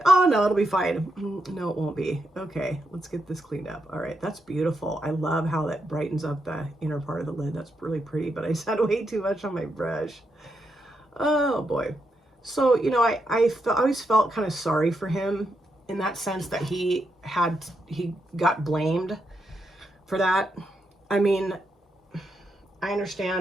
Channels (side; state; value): both; normal; correlation 0.82